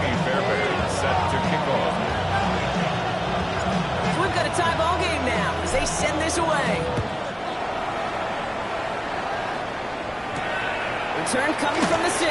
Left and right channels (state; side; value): identical; both; correlation 1.00